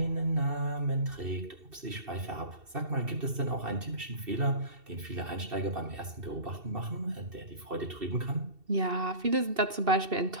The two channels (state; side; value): late; left; 2.7 ms